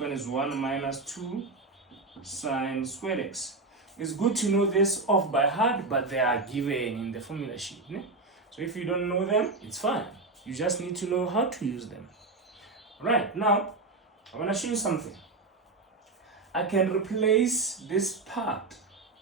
is 1 minus 2 sine squared x. It's good to know this off by heart, but they are given in the formula sheet. So if you don't know them, it's fine. You just need to know how to use them. Right, now I want to show you something. I can replace this part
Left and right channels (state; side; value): quieter; left; 3.5 dB